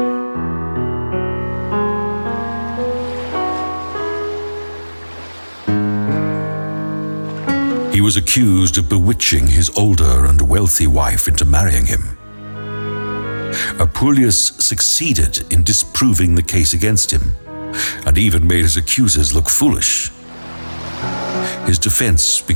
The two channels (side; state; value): both; inverted; correlation -1.00